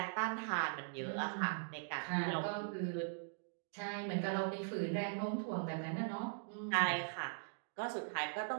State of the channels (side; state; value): left; silent; digital silence